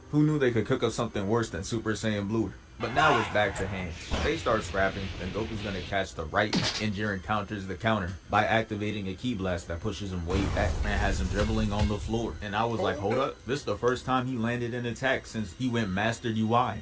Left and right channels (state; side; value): identical; both; correlation 1.00